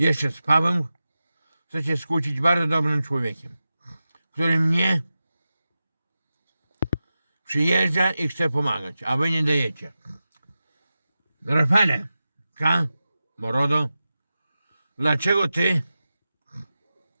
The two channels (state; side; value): inverted; both; correlation -0.93